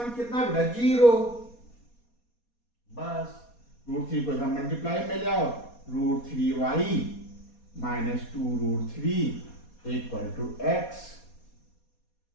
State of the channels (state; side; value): late; right; 4.2 ms